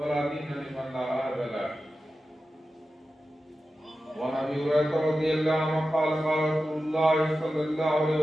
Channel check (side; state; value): both; normal; correlation 0.93